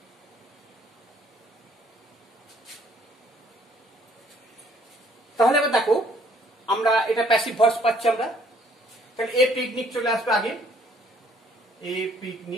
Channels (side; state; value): both; normal; correlation 0.62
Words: তাহলে এবার দেখো আমরা এটা প্যাসিভ ভয়েস পাচ্ছি আমরা। তাহলে এ পিকনিক চলে আসবে আগে, এ